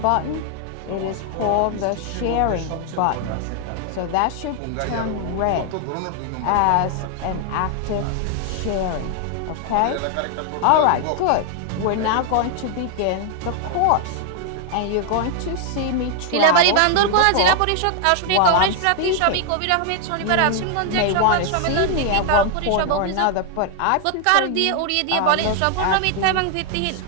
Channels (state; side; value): different; both; correlation 0.00